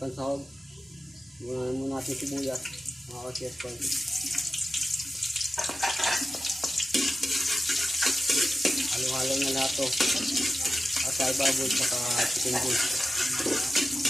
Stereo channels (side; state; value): both; normal; correlation 0.92